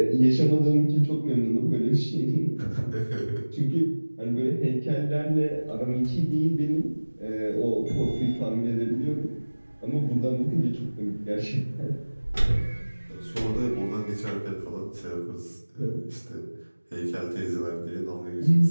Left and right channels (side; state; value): both; inverted; correlation -1.00